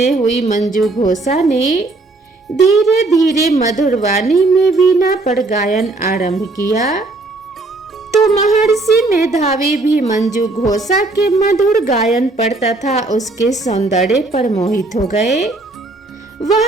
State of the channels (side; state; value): left; quieter; 3.1 dB